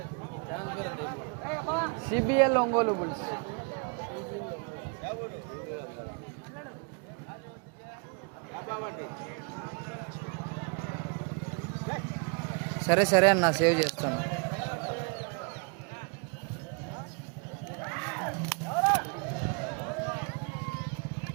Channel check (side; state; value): left; quieter; 35.1 dB